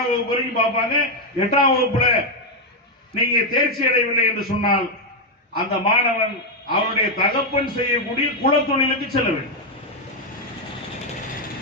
வகுப்பு வரைக்கும் பார்ப்பாங்க. 8ஆம் வகுப்புல நீங்க தேர்ச்சி அடையவில்லை என்று சொன்னால் அந்த மாணவன் அவருடைய தகப்பன் செய்யக்கூடிய குலத்தொழிலுக்கு செல்ல வேண்டும்.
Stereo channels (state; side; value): normal; both; correlation 0.01